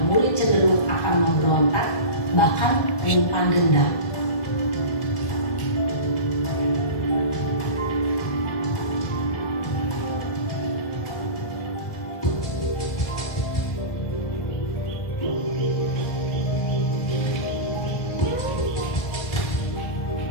murid cenderung akan memberontak, bahkan menyimpan dendam.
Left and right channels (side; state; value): right; late; 1.6 ms